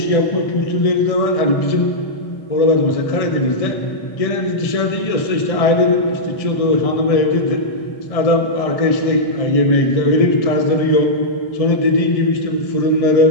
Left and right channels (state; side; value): late; right; 1.6 ms